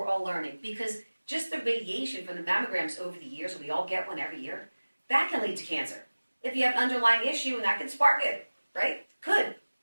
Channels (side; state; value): both; inverted; correlation -1.00